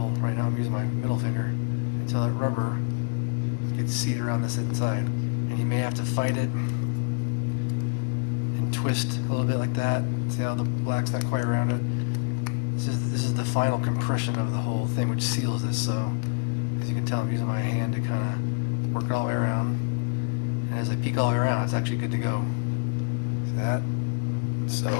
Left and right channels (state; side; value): quieter; right; 34.0 dB